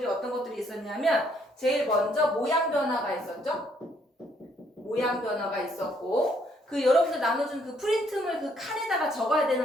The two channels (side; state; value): both; normal; correlation 0.68